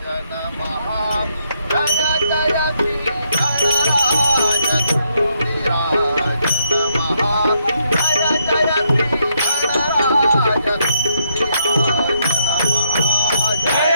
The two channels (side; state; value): both; inverted; correlation -0.75